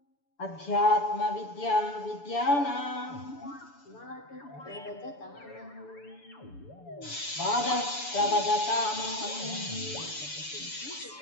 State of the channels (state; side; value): late; right; 7.0 ms